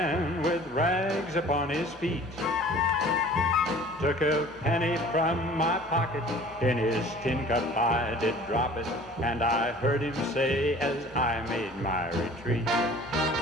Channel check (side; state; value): both; normal; correlation 0.47